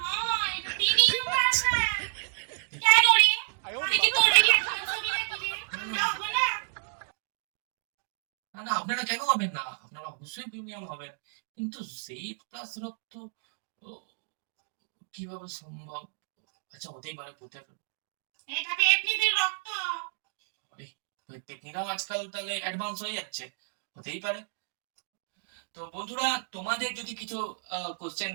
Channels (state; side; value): silent; left; digital silence